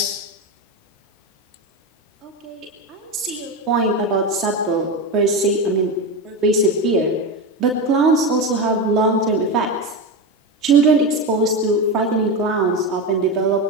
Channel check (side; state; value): both; normal; correlation 0.17